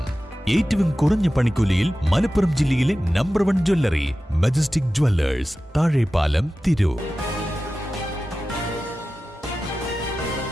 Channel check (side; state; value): both; normal; correlation 0.94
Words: ഏറ്റവും കുറഞ്ഞ പണിക്കൂലിയിൽ മലപ്പുറം ജില്ലയിലെ number 1 jewellery majestic Jewellers, Thazhepalam, Tirur.